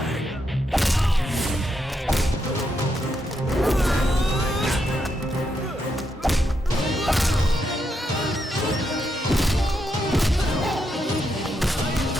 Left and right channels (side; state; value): both; normal; correlation 0.81